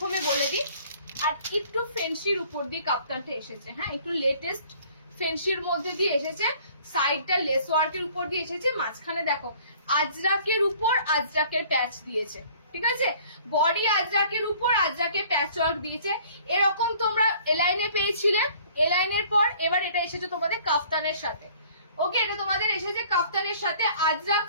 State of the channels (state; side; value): inverted; both; correlation -0.54